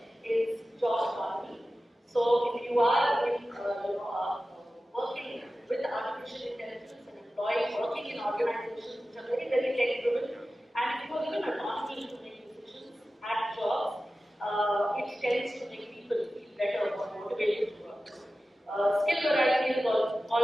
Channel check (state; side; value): normal; both; correlation 0.95